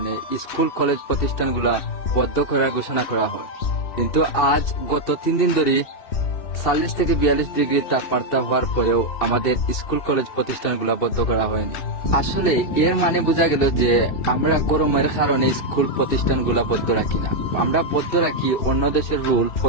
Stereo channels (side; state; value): right; late; 2.7 ms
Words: স্কুল কলেজ প্রতিষ্ঠানগুলা বন্ধ করার ঘোষণা করা হয়, কিন্তু আজ গত 3 দিন ধরে 40 থেকে 42 ডিগ্রি তাপমাত্রা হওয়ার পরেও আমাদের স্কুল কলেজ প্রতিষ্ঠানগুলো বন্ধ করা হয়নি। আসলে এর মানে বোঝা গেল যে আমরা গরমের কারণে স্কুল প্রতিষ্ঠানগুলো বন্ধ রাখি না, আমরা বন্ধ রাখি অন্য দেশের রুল